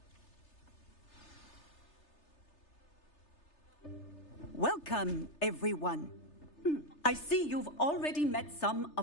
Welcome, everyone. I see you've already met some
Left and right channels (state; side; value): late; right; 3.3 ms